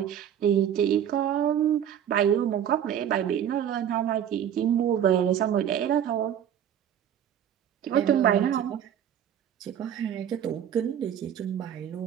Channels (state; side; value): quieter; left; 9.6 dB